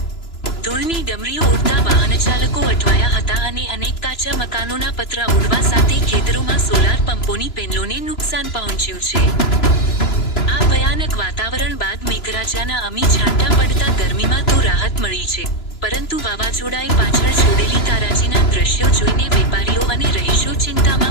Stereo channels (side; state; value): right; late; 3.0 ms